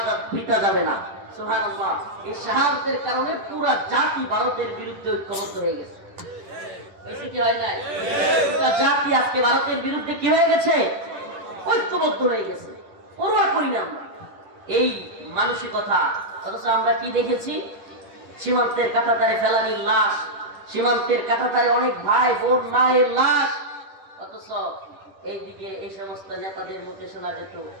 বৃথা যাবে না। সুবহানাল্লাহ। এই শাহাদাতের কারণে পুরো জাতি ভারতের বিরুদ্ধে ঐক্যবদ্ধ হয়ে গেছে। কি হয় নাই? পুরো জাতি আজকে ভারতের বিরুদ্ধে কি হয়ে গেছে? ঐক্যবদ্ধ হয়ে গেছে। পরোয়া করি না আমরা এই মানসিকতা। অথচ আমরা কি দেখেছি? সীমান্তের কাঁটাতারে ফেলানির লাশ, সীমান্তের কাঁটাতারে অনেক ভাই বোন মায়ের লাশ। অথচ এইদিকে এই সমস্ত নেতাদের মুখে শোনা যেত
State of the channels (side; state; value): left; late; 10 ms